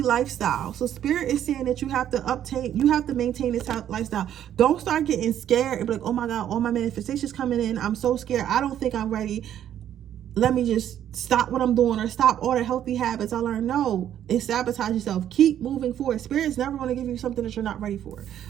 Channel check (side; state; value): left; quieter; 10.6 dB